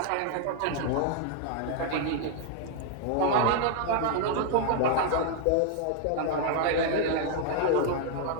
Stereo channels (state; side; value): different; both; correlation 0.00